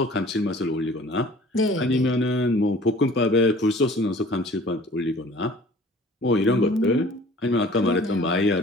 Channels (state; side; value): normal; both; correlation 0.49